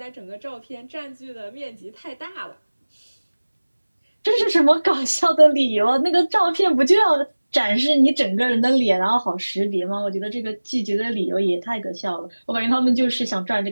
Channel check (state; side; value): inverted; both; correlation -1.00